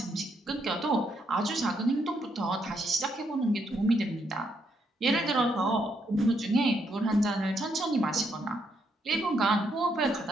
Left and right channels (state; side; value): normal; both; correlation 0.76